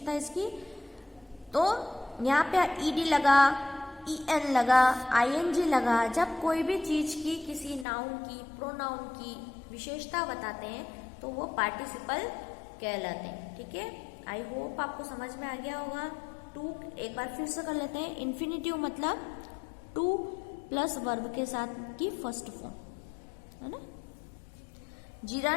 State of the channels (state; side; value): drops out; right; at 7.9 s